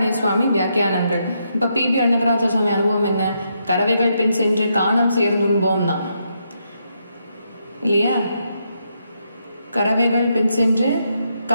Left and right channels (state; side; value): inverted; both; correlation -0.79